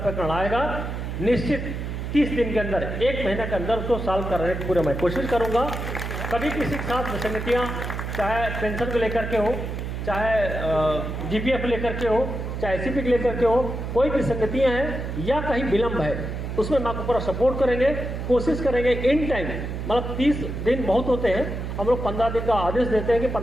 आएगा, निश्चित 30 दिन के अंदर, 1 महीने के अंदर उसको सॉल्व करने की पूरा मैं कोशिश करूँगा। कभी किसी के साथ विसंगतियाँ, चाहे पेंशन को लेकर के हो, चाहे GPF लेकर के हो, चाहे ACP को लेकर के हो, कोई भी संगतियाँ हैं या कहीं विलम्ब है, उसमें हम आपको पूरा सपोर्ट करेंगे, कोशिश करेंगे इन टाइम। मतलब 30 दिन बहुत होते हैं, हम लोग 15 दिन का आदेश देते हैं कि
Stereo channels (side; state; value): right; noise; hum, 5 dB below the sound